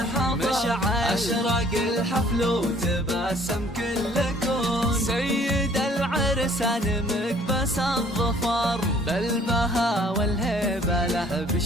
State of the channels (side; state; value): both; normal; correlation 0.57